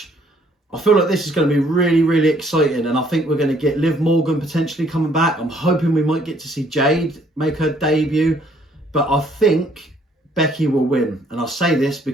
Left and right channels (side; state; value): both; normal; correlation 0.64